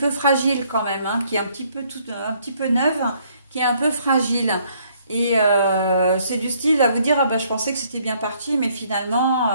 fragile quand même, hein, qui est un petit peu neuve, qui est un peu fragile. Et c'est du style à vous dire, ah ben, je pensais que c'était bien parti, mais finalement,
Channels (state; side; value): inverted; both; correlation -0.66